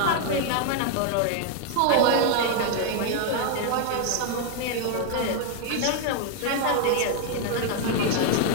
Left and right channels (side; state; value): both; different; correlation 0.00